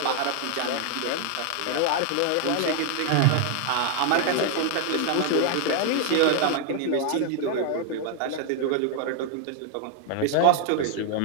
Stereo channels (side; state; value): both; different; correlation 0.00